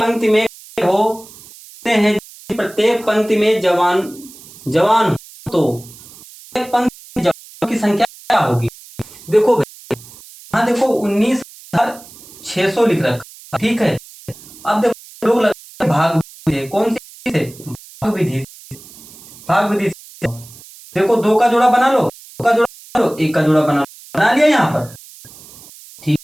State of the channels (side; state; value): right; noise; hiss, 20 dB below the sound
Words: में होते हैं प्रत्येक पंक्ति में जवान हो तो एक पंक्ति में जवानों की संख्या क्या होगी। देखो भाई यहाँ देखो 19,600 लिख रखा, ठीक है। अब देखो लोग लगा भाग विधि, कौन सी है भाग विधि। से देखो दो का जोड़ा बना लो, दो का जोड़ा बना लो, एक का जोड़ा बना लिया यहाँ पर,